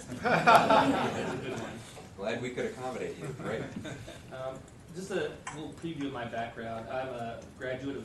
a good one. Glad we could accommodate you, right? Just a little preview of my background. I'm a graduate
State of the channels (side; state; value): both; identical; correlation 1.00